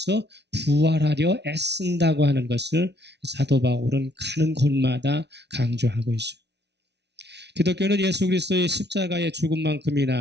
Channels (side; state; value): left; late; 0.50 ms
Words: 부활하려 애쓴다고 하는 것을 사도 바울은 가는 곳마다 강조하고 있어요. 기독교는 예수 그리스도의 십자가의